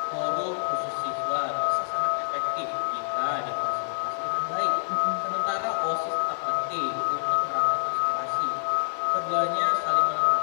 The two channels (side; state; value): right; silent; digital silence